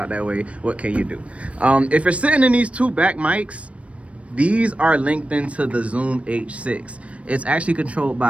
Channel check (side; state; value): left; late; 0.063 ms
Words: that way. What can you do? If you're sitting in these two back mics, these are linked into the Zoom H6. It's actually controlled